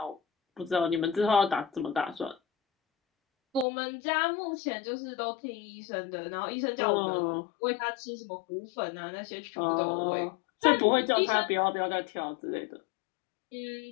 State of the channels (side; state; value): right; drops out; at 3.7 s